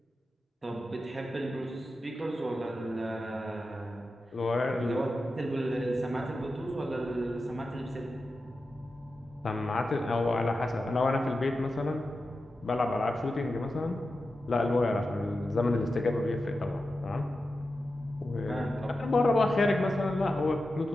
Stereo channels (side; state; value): both; normal; correlation 0.91